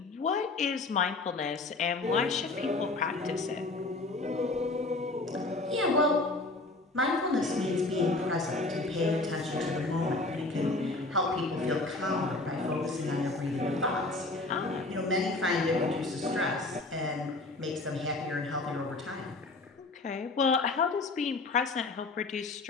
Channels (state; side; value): quieter; right; 3.2 dB